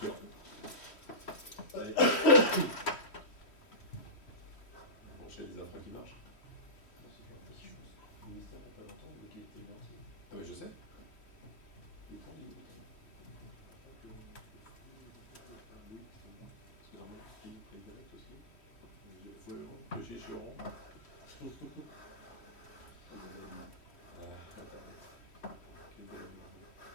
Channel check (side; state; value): right; late; 3.1 ms